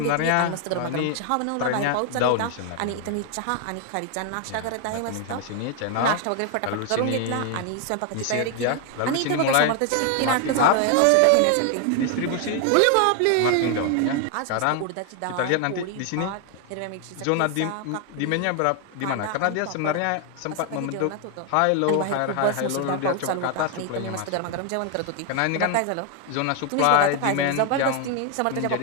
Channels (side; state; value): both; different; correlation 0.00